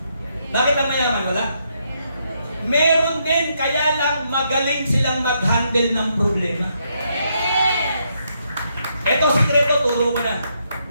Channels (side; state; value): both; inverted; correlation -0.77